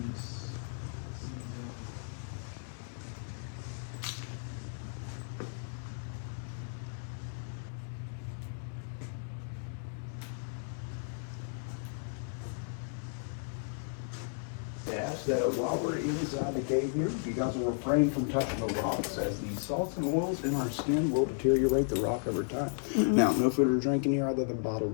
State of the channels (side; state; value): right; silent; digital silence